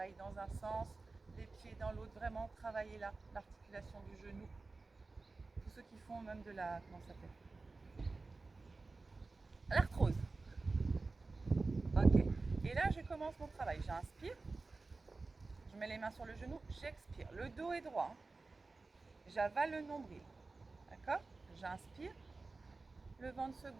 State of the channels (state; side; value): quieter; left; 3.7 dB